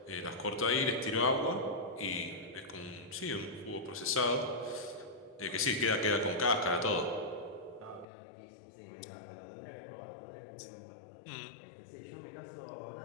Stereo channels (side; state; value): right; drops out; at 8.1 s